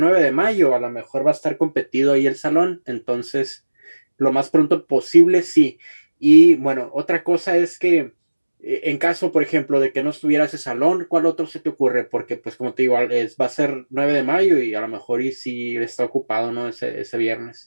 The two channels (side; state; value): both; inverted; correlation -1.00